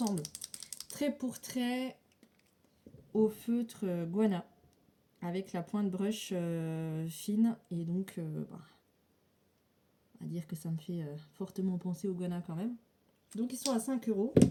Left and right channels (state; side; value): identical; both; correlation 1.00